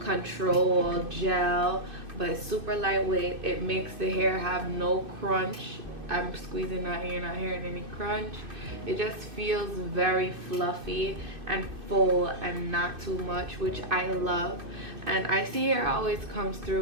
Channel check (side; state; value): left; late; 2.6 ms